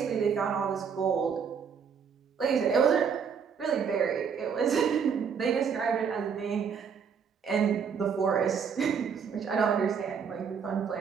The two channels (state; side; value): quieter; left; 6.7 dB